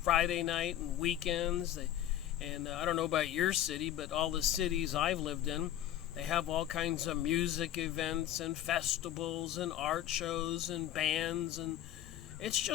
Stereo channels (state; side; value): quieter; right; 12.0 dB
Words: Friday night and weekends. And I don't know about your city, but all the cities I've lived in, they have all kinds of music events and festivals and art shows and bands. And it's